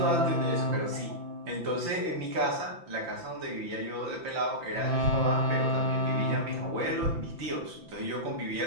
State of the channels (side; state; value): left; late; 5.9 ms